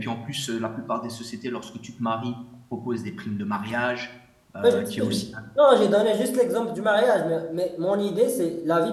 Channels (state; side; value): identical; both; correlation 1.00